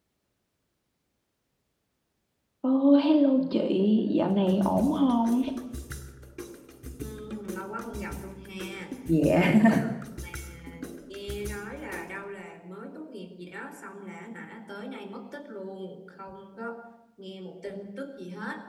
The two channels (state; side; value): identical; both; correlation 1.00